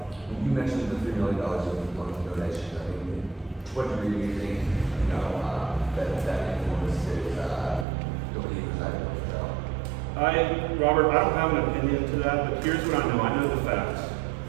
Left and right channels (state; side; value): drops out; left; at 7.9 s